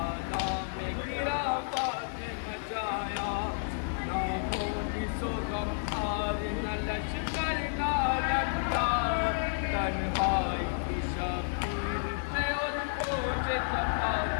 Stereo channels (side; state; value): right; silent; digital silence